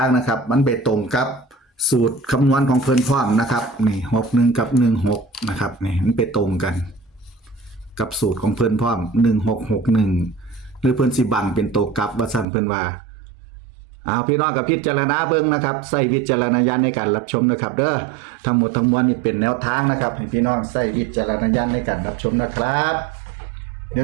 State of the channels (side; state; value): left; drops out; at 12.5 s